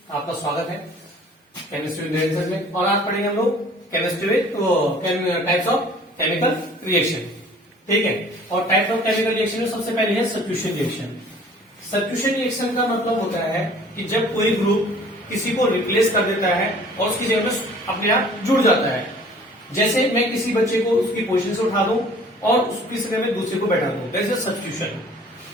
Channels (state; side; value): normal; both; correlation 0.51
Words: आपका स्वागत है केमिस्ट्री विद में। और आज पढ़ेंगे हम लोग chemistry with types of chemical reaction. ठीक है, और टाइप्स ऑफ केमिकल रिएक्शन में सबसे पहले है सब्स्टिट्यूशन रिएक्शन। सब्स्टिट्यूशन रिएक्शन का मतलब होता है कि जब कोई ग्रुप किसी को रिप्लेस कर देता है और उसकी जगह में अपने आप जुड़ जाता है। जैसे मैं किसी बच्चे को उसकी पोजीशन से उठा दूं और उसकी जगह में दूसरे को बैठा दूं, दैट इज सब्स्टिट्यूशन।